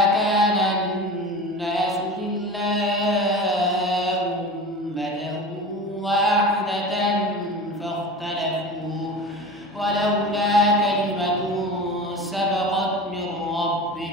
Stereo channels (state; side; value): normal; both; correlation 0.33